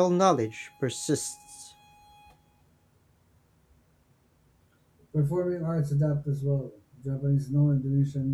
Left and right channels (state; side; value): identical; both; correlation 1.00